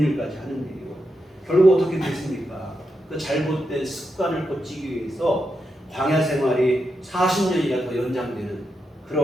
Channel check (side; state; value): both; normal; correlation 0.85